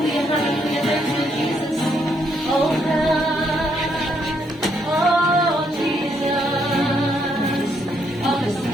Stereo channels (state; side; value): normal; both; correlation 0.74